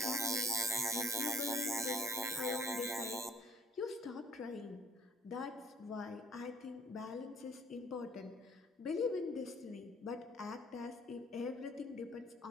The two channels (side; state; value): both; normal; correlation 0.59